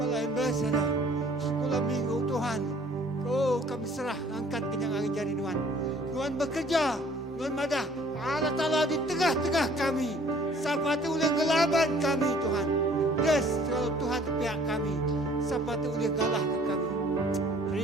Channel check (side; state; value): both; normal; correlation 0.55